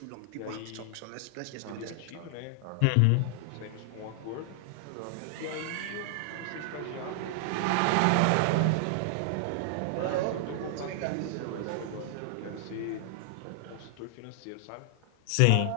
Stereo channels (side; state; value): both; different; correlation 0.00